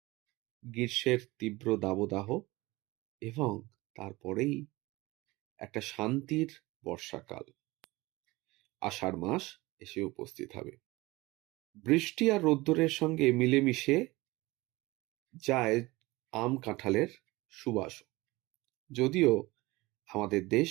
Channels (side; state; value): left; quieter; 21.2 dB